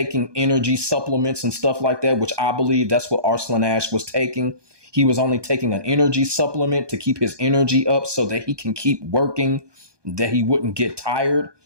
energy supplements and stuff like that, which I believe that's what Arslan Ash was taking. He was only taking an energy supplement to keep his energy up so that he can keep working, that he wouldn't get tired.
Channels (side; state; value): left; late; 1.2 ms